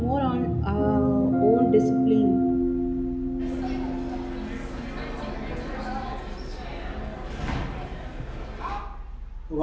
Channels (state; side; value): identical; both; correlation 1.00